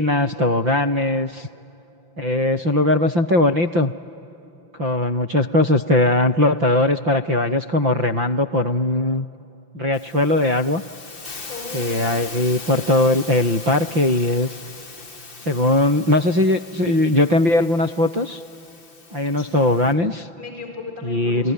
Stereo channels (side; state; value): left; late; 5.8 ms